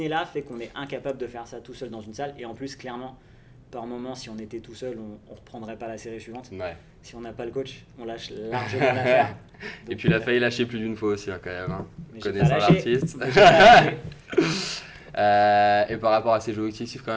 fait qu'on est incapable de faire ça tout seul dans une salle. Et en plus, clairement, par moment, si on était tout seul, on ne reprendrait pas la série suivante. Si on n'a pas le coach, on lâche largement l'affaire. Et puis il a failli lâcher plus d'une fois aussi là, quand même, hein. Connaissant l'artiste. Et par rapport à ses objectifs quand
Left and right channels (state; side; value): identical; both; correlation 1.00